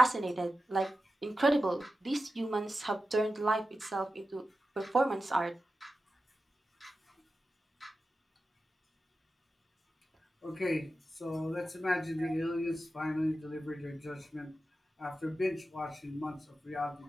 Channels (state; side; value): normal; both; correlation 0.92